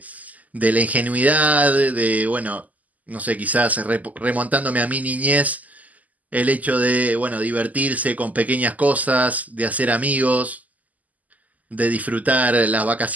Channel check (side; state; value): left; late; 0.077 ms